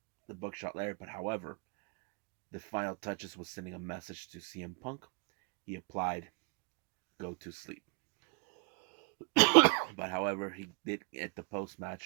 the buckshot lariat. But however, the final touches was sending a message to CM Punk. He applied "Go to sleep." But however, he did at the post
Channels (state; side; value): quieter; left; 34.7 dB